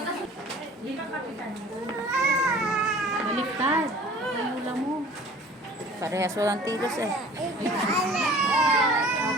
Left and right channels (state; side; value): normal; both; correlation 0.47